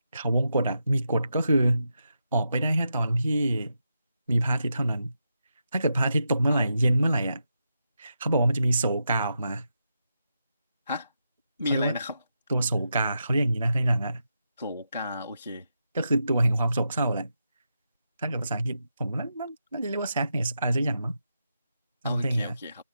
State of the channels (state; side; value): inverted; both; correlation -0.85